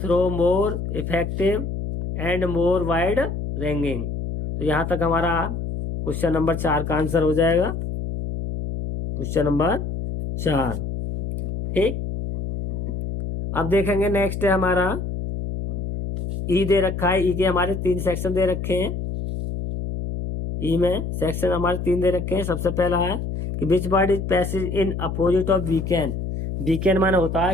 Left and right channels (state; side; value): noise; left; hum, 4 dB below the sound